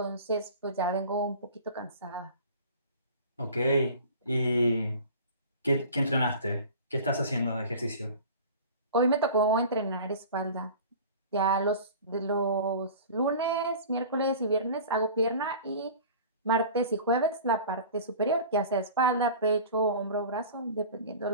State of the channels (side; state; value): both; inverted; correlation -0.40